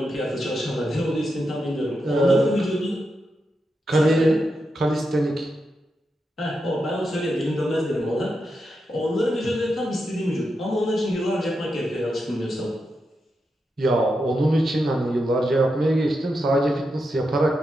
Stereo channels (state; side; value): normal; both; correlation 0.86